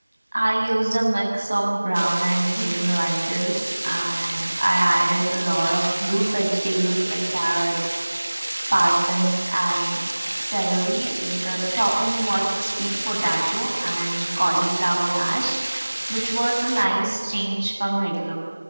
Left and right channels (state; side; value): inverted; both; correlation -1.00